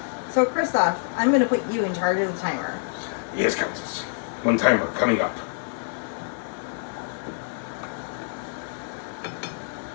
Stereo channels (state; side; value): silent; right; 61 dB below the other